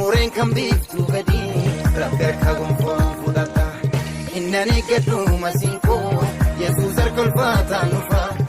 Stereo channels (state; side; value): identical; both; correlation 1.00